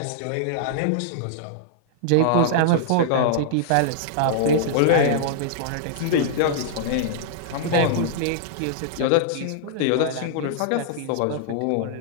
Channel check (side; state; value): both; different; correlation -0.02